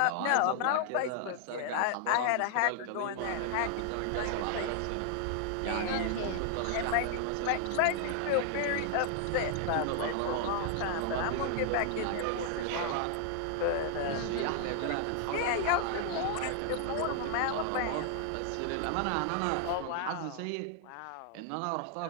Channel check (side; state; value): both; different; correlation 0.00